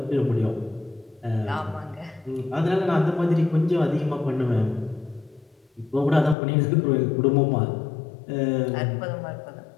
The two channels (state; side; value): drops out; right; at 6.4 s